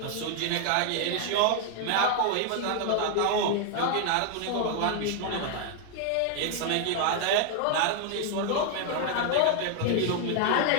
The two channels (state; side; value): different; both; correlation 0.00